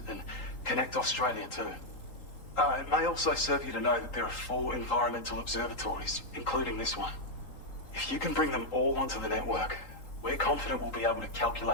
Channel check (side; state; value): right; late; 3.8 ms